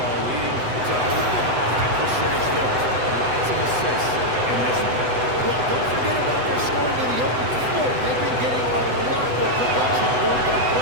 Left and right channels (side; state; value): left; late; 8.0 ms